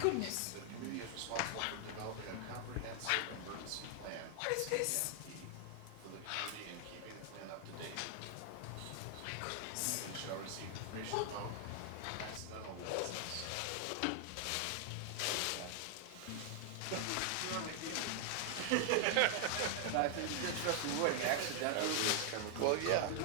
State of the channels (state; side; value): different; both; correlation 0.00